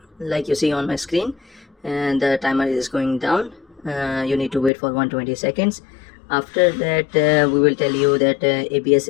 like you see on my screen, and the timer is going down. You need to wait for 120 seconds. After that, we will tell you that ABS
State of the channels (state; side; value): drops out; right; at 4.7 s